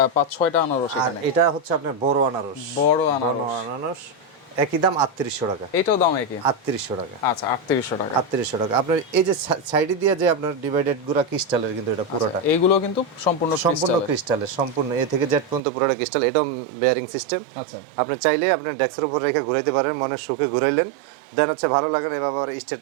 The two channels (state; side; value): drops out; left; at 15.6 s